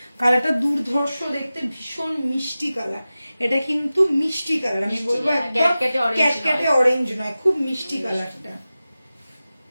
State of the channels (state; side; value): inverted; both; correlation -0.96